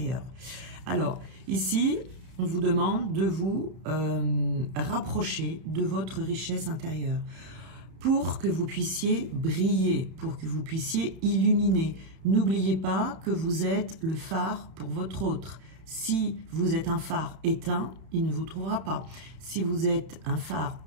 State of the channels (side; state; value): left; late; 31 ms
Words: Alors, ici, on vous demande de vous rapprocher de votre richesse intérieure pour que vous puissiez briller, pour que vous puissiez illuminer. N'oubliez pas que vous êtes le phare pour votre autre. Si vous êtes un phare éteint, il ne vous trouvera pas. Si vous êtes un phare